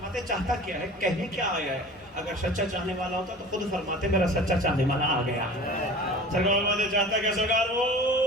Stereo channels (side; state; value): both; normal; correlation 0.41